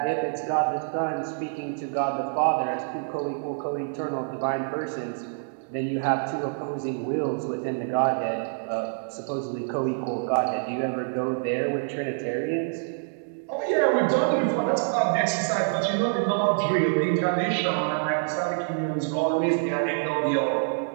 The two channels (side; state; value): left; silent; digital silence